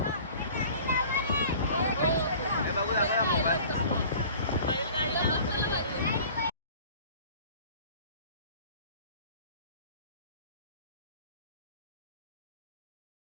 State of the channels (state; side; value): inverted; both; correlation -0.46